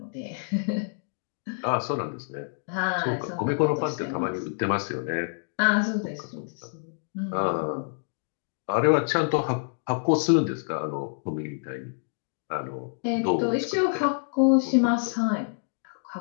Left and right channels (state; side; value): silent; right; digital silence